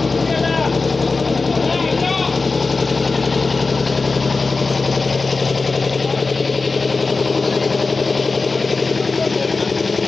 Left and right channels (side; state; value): right; quieter; 3.9 dB